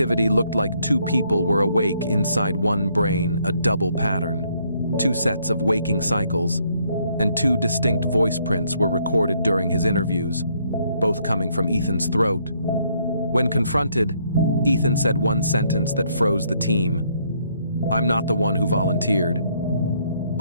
looked like two people were awake inside one brain, a double pattern. 2 sets of waking cycles, and 2 distinct voice prints were recorded during his interviews, both coming from Ethan's throat. When confronted, Ethan said one sentence that froze the team: "I'm not the one who volunteered."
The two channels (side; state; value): both; inverted; correlation -0.70